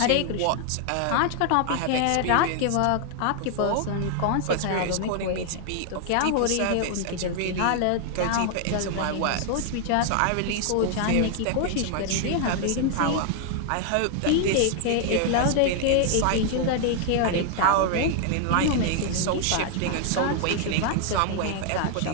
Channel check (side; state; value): both; different; correlation 0.00